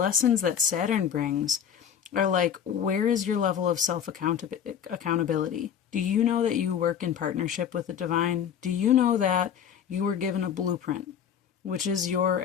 that Saturn brings are like, where is your level of self-accountability? Do you know that you work in partnership with the divine? Do you know that you were given a blueprint, which is your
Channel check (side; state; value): right; quieter; 8.5 dB